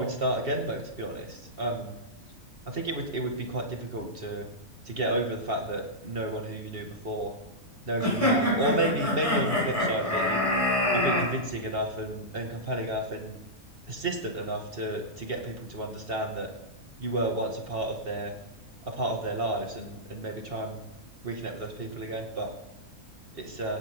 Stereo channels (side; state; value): both; normal; correlation -0.11